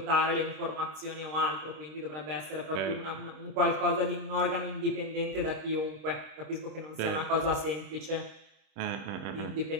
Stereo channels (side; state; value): left; late; 26 ms